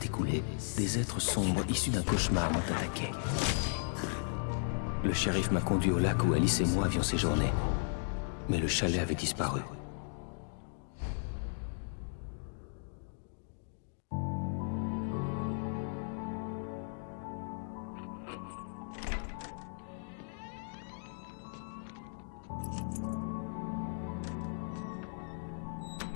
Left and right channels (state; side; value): silent; right; digital silence